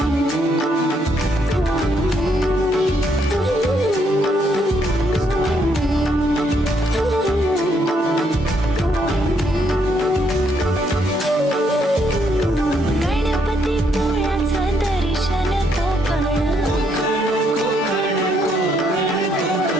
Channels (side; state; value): both; normal; correlation 0.73